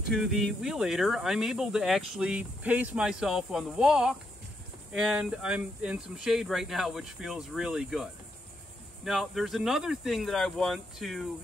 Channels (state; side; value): normal; both; correlation 0.79